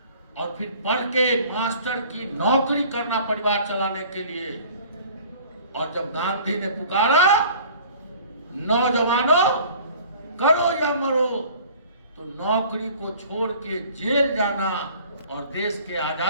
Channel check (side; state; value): both; inverted; correlation -0.48